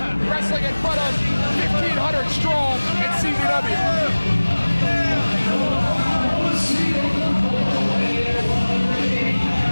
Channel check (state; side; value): inverted; both; correlation -1.00